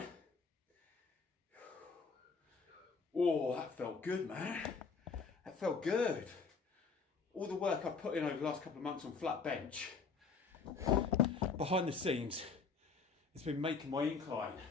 Oh, that felt good, man. That felt good. All the work I've put in over the last couple of months on flat bench, behind the scenes, it's been making my incline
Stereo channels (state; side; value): quieter; right; 4.9 dB